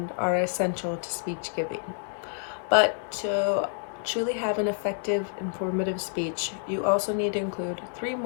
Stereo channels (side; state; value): right; silent; digital silence